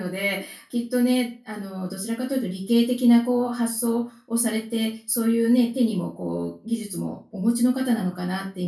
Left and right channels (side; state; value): both; identical; correlation 1.00